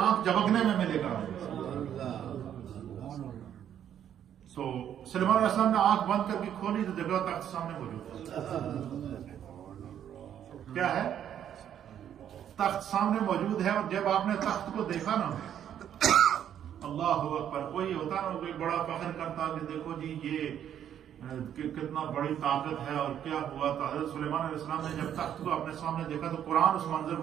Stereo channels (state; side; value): quieter; left; 9.8 dB